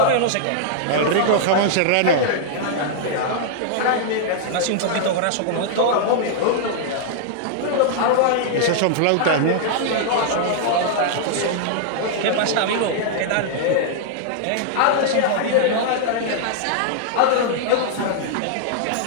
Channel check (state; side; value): different; both; correlation -0.01